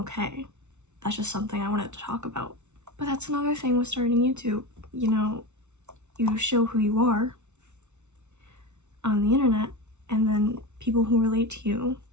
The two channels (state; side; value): late; left; 0.82 ms